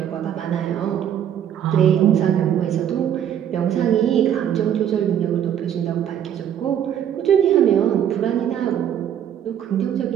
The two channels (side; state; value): left; quieter; 9.7 dB